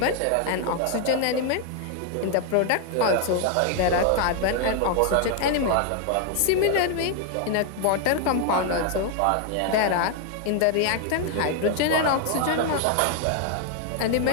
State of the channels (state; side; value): different; both; correlation 0.00